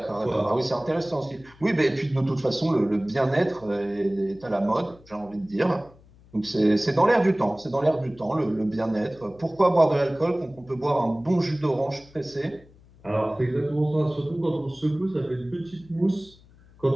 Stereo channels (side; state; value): left; noise; hum, 26 dB below the sound